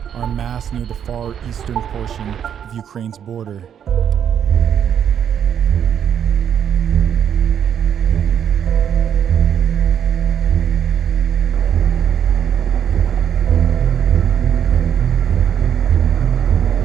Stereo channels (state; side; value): quieter; left; 8.8 dB